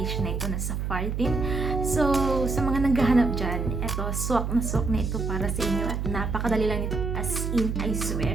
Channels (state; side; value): noise; right; hum, 2 dB below the sound